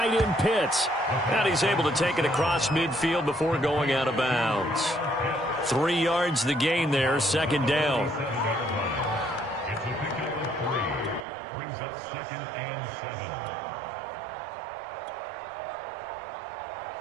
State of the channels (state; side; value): drops out; left; at 11.2 s